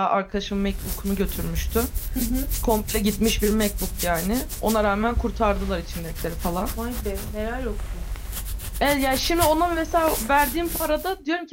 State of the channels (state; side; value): identical; both; correlation 1.00